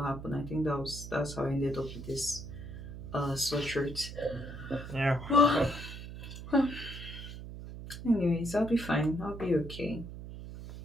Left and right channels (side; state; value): right; noise; hum, 10 dB below the sound